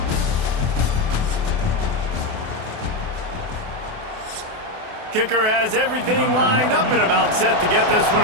Kicker has everything lined up and about set to get this one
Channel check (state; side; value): late; left; 28 ms